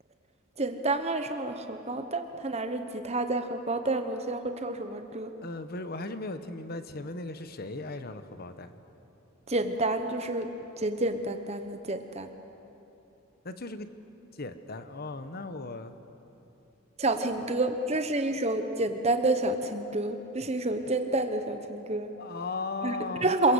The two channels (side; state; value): both; normal; correlation 0.17